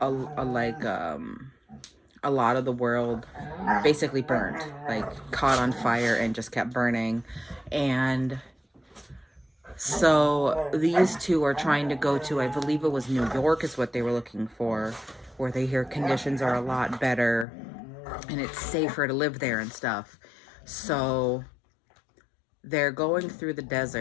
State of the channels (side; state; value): right; drops out; at 17.4 s